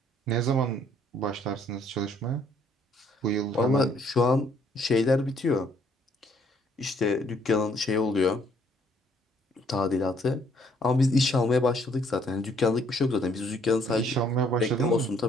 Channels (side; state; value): both; normal; correlation 0.65